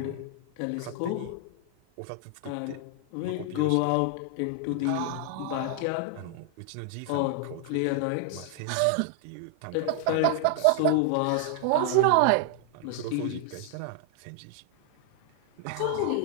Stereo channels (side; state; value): both; different; correlation 0.00